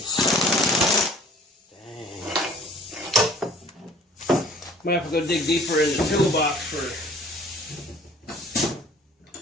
Dang. Might have to go dig deeper in the toolbox for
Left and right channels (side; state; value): both; normal; correlation 0.52